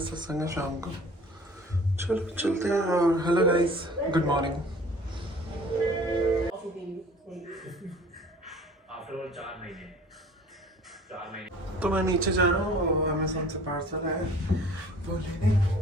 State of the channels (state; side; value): normal; both; correlation 0.48